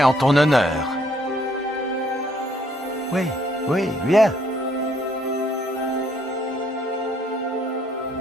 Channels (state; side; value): normal; both; correlation 0.67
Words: en ton honneur. Oui, oui, viens.